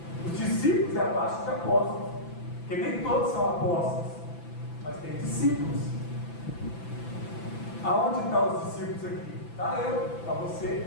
Os discípulos é abaixo de apóstolos, porque nem todos são apóstolos, mas tem discípulos. Aonde estão os discípulos aqui? Está eu, está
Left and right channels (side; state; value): right; late; 5.9 ms